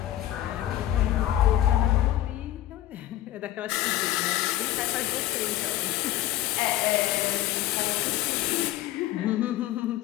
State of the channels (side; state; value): right; quieter; 13.9 dB